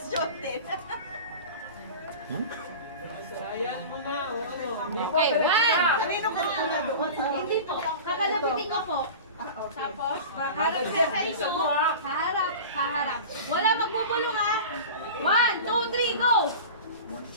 din. Ayan mo na, Okay, one. Kanino ka muna doon? Hindi po. Kakalapitin ko po. Tapos, harap ka sa inyo. Haharap. Wala magbubulong ha. 1, 2, 3, go!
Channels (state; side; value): inverted; both; correlation -0.34